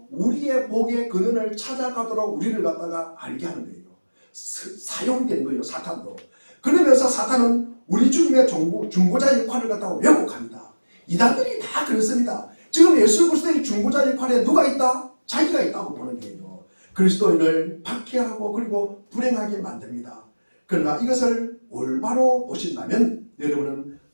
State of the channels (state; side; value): inverted; both; correlation -1.00